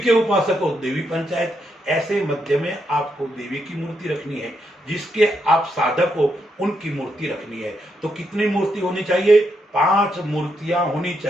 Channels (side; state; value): both; normal; correlation 0.80